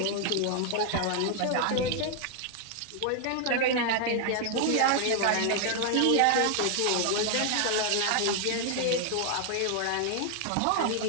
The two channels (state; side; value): different; both; correlation 0.00